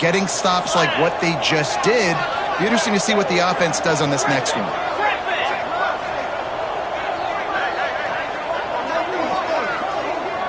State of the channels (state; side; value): identical; both; correlation 1.00